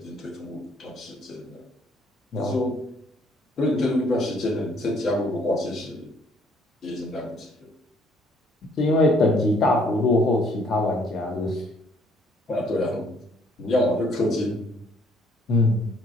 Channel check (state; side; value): normal; both; correlation 0.63